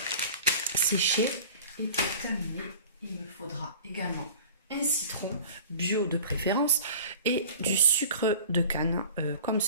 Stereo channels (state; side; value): inverted; both; correlation -0.42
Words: séchées et pour terminer, il me faudra également un citron bio de préférence et du sucre de canne comme